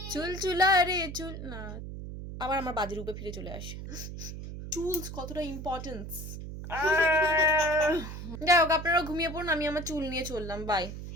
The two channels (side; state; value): right; noise; hum, 9 dB below the sound